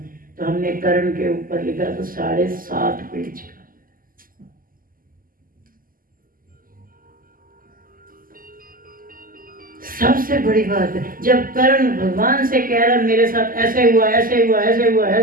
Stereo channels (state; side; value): late; left; 0.41 ms